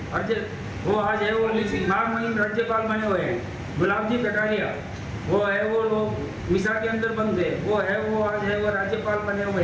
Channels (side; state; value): both; identical; correlation 1.00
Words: और वो आज है वो महामहिम राज्यपाल बने हुए हैं। गुलाब जी कटारिया वो है वो लोग मिसा के अंदर बंद थे, वो है वो आज है वो राज्यपाल बने हुए